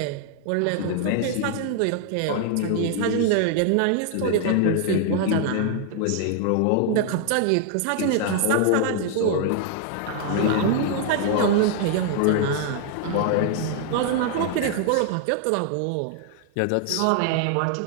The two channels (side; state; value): both; different; correlation 0.00